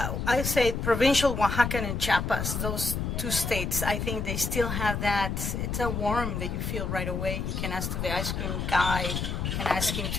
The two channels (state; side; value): noise; left; rumble, 2 dB below the sound